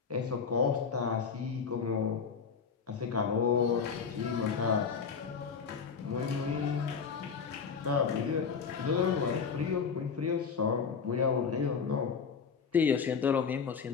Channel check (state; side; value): quieter; right; 6.0 dB